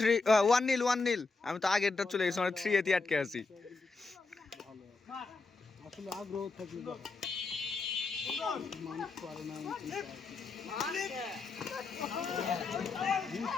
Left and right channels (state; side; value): quieter; right; 3.9 dB